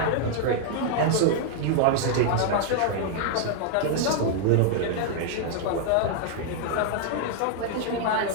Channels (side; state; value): both; different; correlation -0.01